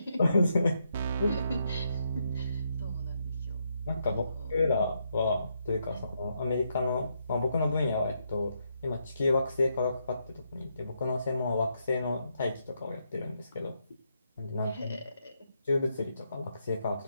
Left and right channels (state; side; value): inverted; both; correlation -0.79